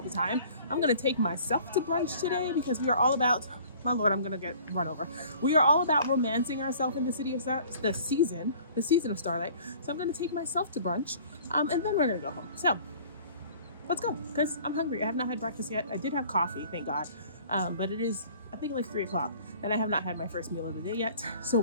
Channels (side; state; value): both; inverted; correlation -0.50